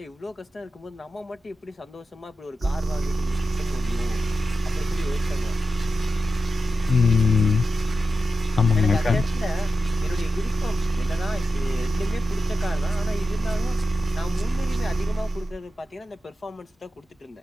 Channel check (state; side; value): normal; both; correlation 0.90